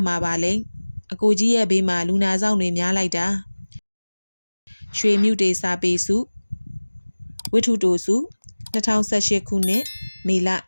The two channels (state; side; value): inverted; both; correlation -1.00